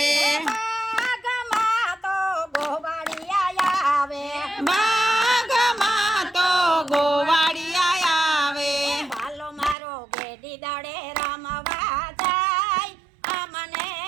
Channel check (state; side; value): drops out; left; at 9.8 s